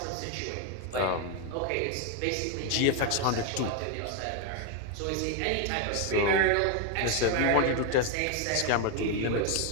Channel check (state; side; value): different; both; correlation 0.01